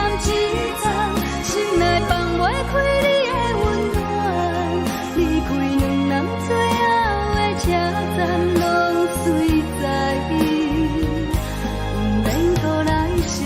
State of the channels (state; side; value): identical; both; correlation 1.00